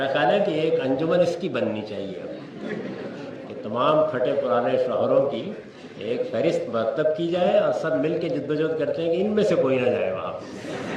خیال ہے کہ ایک انجمن اس کی بننی چاہیے کہ تمام پھٹے پرانے شوہروں کی ایک فہرست مرتب کی جائے اور سب مل کے جدوجہد کرتے ہیں کہ ان میں سے کوئی نہ جائے وہاں۔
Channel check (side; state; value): both; identical; correlation 1.00